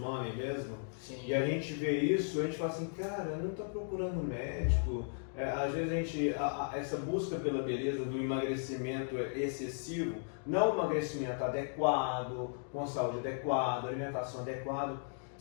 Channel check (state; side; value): silent; right; digital silence